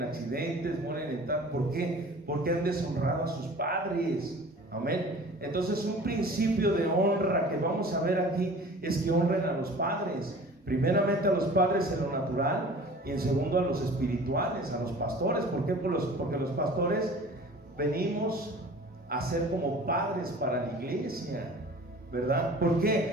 accidentes, mueren en tal. ¿Por qué? Porque han deshonrado a sus padres. Amén. Entonces, un principio de honra que vamos a ver aquí es que honren a los padres. Primeramente a los padres en lo natural, y en segundo a los espirituales, a los pastores. ¿Por qué? Porque los pastores venimos a ser como padres para la iglesia, ¿verdad? ¿Por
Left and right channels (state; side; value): normal; both; correlation 0.44